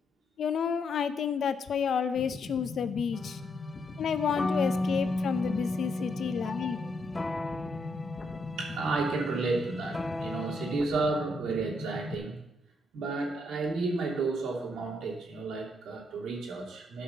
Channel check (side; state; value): both; normal; correlation 0.76